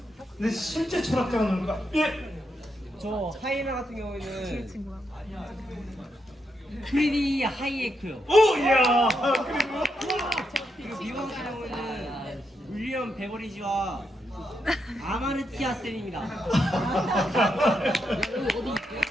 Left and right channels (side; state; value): both; normal; correlation 0.82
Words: 근데 실제 철학자가 누굴까? 예. 저 하이에나 같은 경우에는 프리디 하이에크요. 오, 이야. 그리고 미국 같은 경우에는 윌리엄 베버리지와 아마르티아 쌤입니다.